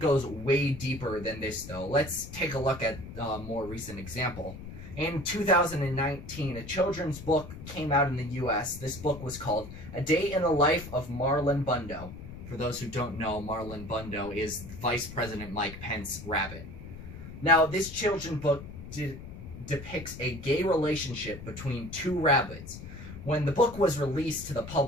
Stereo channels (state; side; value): noise; left; rumble, 12 dB below the sound